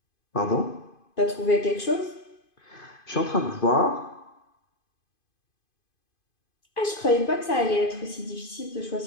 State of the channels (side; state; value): right; late; 2.5 ms